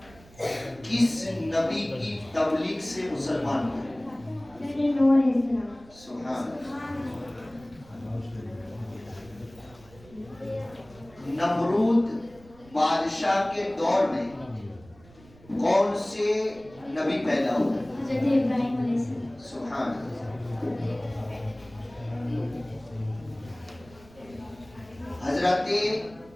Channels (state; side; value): noise; right; rumble, 24 dB below the sound